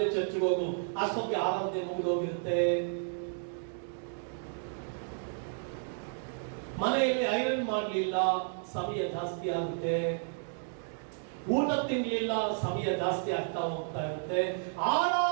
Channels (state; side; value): silent; left; digital silence